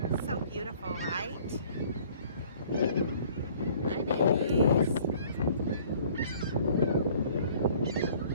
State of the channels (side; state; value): both; inverted; correlation -0.55